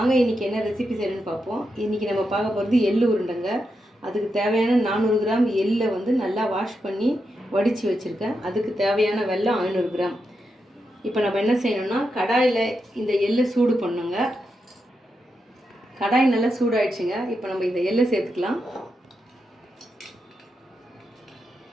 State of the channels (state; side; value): normal; both; correlation 0.86